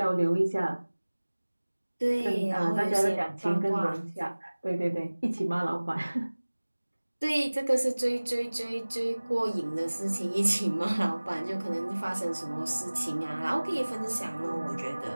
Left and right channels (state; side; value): inverted; both; correlation -1.00